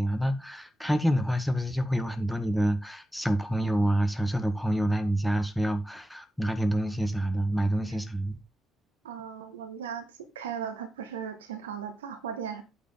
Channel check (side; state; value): both; normal; correlation 0.91